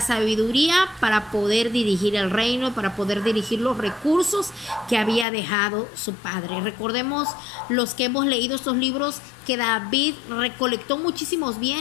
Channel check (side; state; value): right; drops out; at 5.2 s